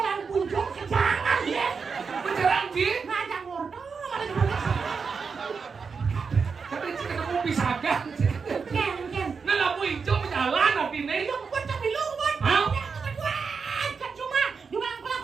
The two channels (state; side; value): quieter; left; 5.4 dB